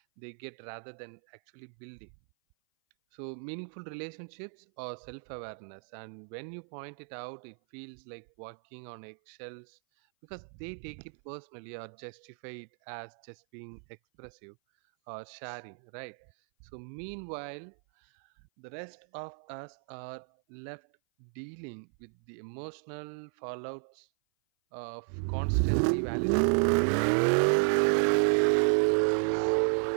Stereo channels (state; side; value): silent; left; 56 dB below the other